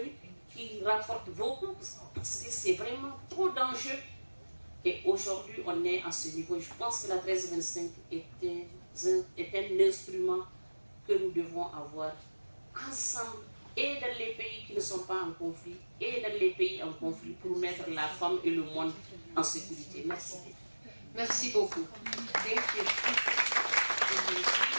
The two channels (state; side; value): inverted; both; correlation -1.00